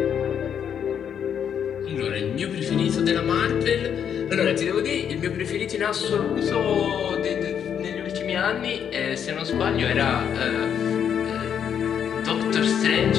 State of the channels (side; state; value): right; quieter; 8.4 dB